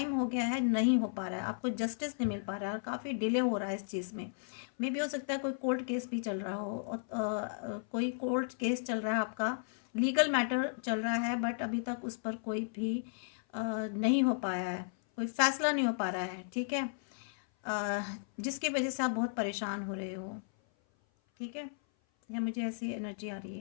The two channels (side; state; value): right; silent; 55 dB below the other